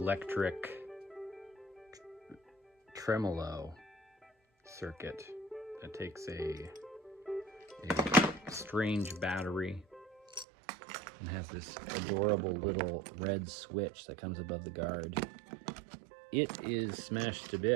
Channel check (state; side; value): drops out; left; at 10.5 s